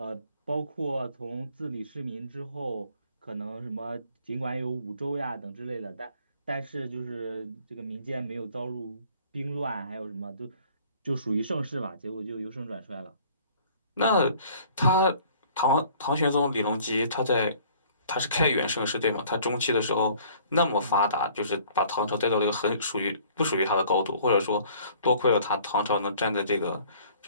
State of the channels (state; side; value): inverted; both; correlation -0.54